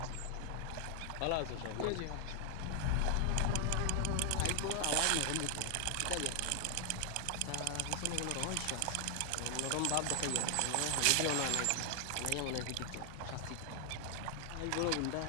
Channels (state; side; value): different; both; correlation 0.00